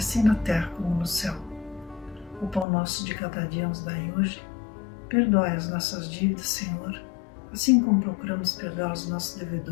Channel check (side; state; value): right; drops out; at 2.7 s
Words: na terra como no céu. O pão nosso de cada dia nos dai hoje, perdoai as nossas dívidas, Senhor, assim como procuramos perdoar os nossos